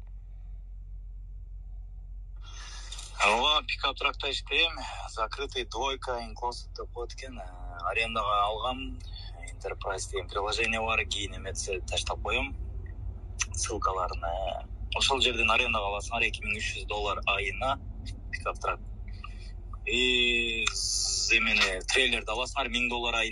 Пикап тракта иштейм. Закрытый двойка инклосов деп коет экен. Арендага алгам. Enterprise деген приложение бар, кийин эметсе таштап коем. Ссылкаларын. Ошол жерден арендага аласыңар $2300 айына пикап трак. Эмени трейлерди аласыңар $1000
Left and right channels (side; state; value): both; identical; correlation 1.00